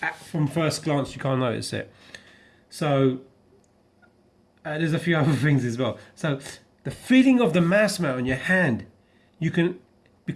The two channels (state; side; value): identical; both; correlation 1.00